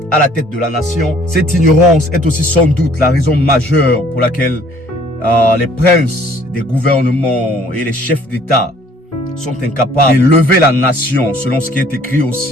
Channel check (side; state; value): both; normal; correlation 0.57